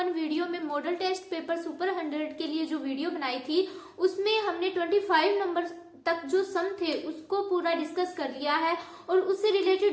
वीडियो में मॉडल टेस्ट पेपर सुपर 100 के लिए जो वीडियो बनाई थी उसमें हमने 25 नंबर तक जो सम थे उसको पूरा डिस्कस कर लिया है और उससे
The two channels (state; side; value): identical; both; correlation 1.00